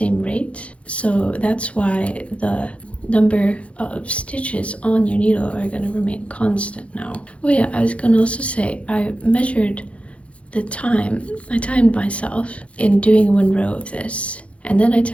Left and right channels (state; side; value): late; right; 0.062 ms